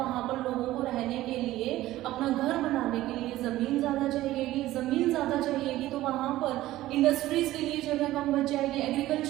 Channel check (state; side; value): quieter; left; 15.7 dB